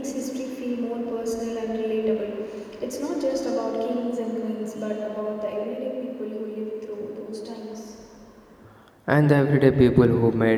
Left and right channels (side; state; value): both; identical; correlation 1.00